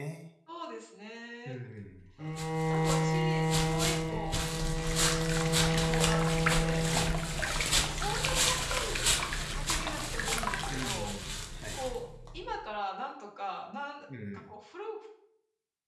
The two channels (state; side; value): identical; both; correlation 1.00